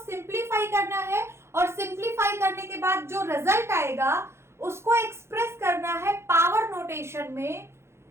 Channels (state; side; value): late; left; 0.13 ms